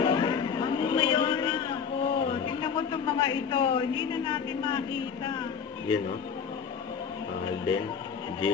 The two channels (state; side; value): quieter; right; 6.8 dB